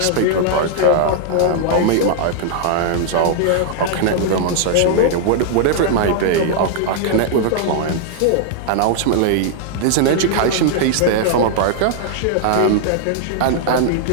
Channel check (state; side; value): different; both; correlation -0.01